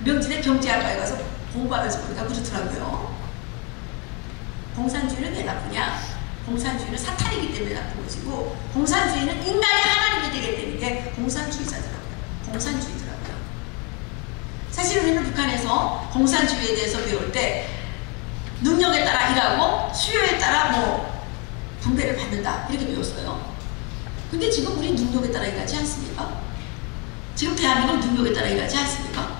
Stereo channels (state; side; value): quieter; right; 32.0 dB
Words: 명진의 경제학과에 가서 공부하면서 보니까 그렇더라고요. 공산주의는 왜 나쁘냐? 공산주의는 사탄이기 때문에 나쁜 것이고, 공산주의는 인간이 하나님이 되게 되는 게 공산주의자더라고요. 공산주의더라고요. 사실 우리는 북한에서 공산주의에 대해서 배울 때 능력에 따라 일하고 수요에 따라 분배를 받는다 이렇게 배웠어요. 근데 지금 우리 능력에 따라 일하지 않습니까? 지금 대한민국 능력에 따라 일하지 않습니까?